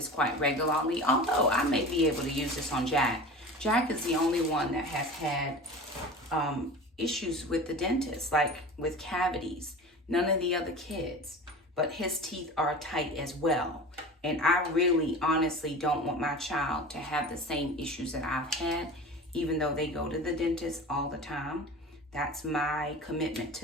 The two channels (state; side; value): normal; both; correlation 0.35